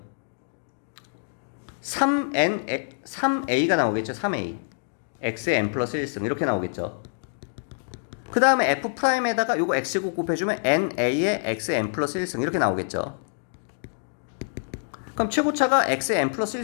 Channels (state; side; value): silent; right; digital silence